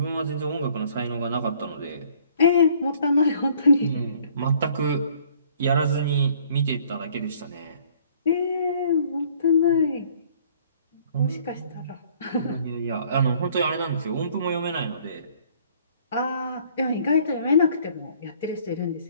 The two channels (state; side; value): inverted; both; correlation -0.58